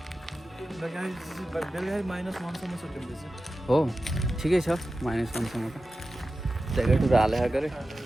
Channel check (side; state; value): both; normal; correlation 0.94